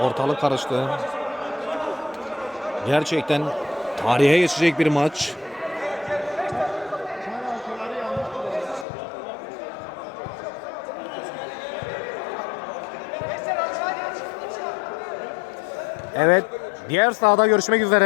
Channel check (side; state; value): right; drops out; at 8.8 s